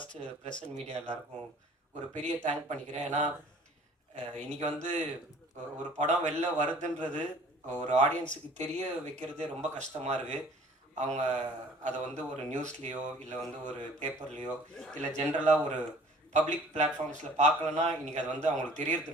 பிரசன்ட் மீடியா எல்லாருக்கும் ஒரு பெரிய தேங்க் பண்ணிக்கிறேன். ஏன்னா இன்றைக்கி வந்து ஒரு படம் வெளில வருதுன்றது ஒரு ஆடியன்ஸுக்கு தெரிய வைக்கிறதே ரொம்ப கஷ்டமாக இருக்குது. அவங்க அதை வந்து ஒரு நியூஸ்லேயோ இல்லை வந்து ஒரு பேப்பர்லேயோ இல்லை ஜென்ரலாக ஒரு பப்ளிக் பிளாட்ஃபார்ம்ஸில் பார்க்கலன்னா இன்றைக்கி அது வந்து அவங்களுக்கு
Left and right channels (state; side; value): normal; both; correlation 0.51